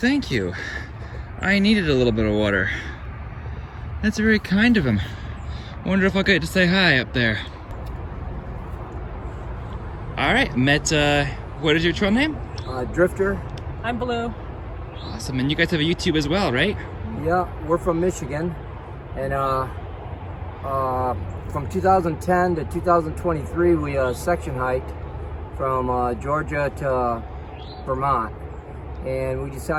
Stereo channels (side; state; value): both; identical; correlation 1.00